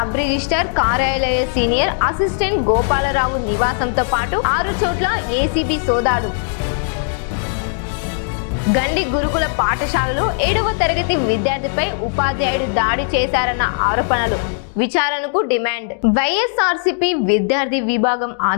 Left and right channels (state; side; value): silent; right; digital silence